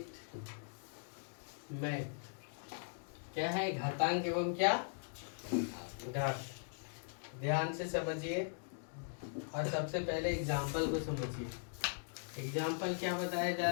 math. क्या है? घातांक एवं क्या घात। ध्यान से समझिए और सबसे पहले एग्जाम्पल को समझिए। एग्जाम्पल क्या बताया जा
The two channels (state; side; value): silent; right; digital silence